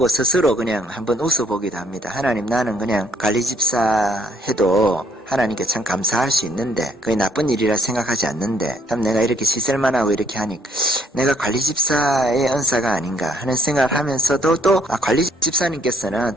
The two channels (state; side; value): normal; both; correlation 0.67